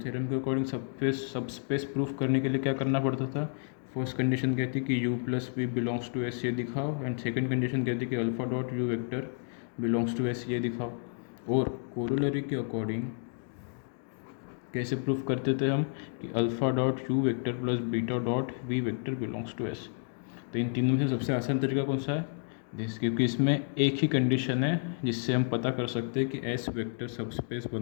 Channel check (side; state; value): right; silent; 57 dB below the other